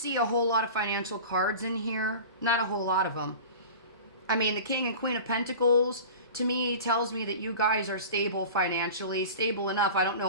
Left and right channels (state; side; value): inverted; both; correlation -0.36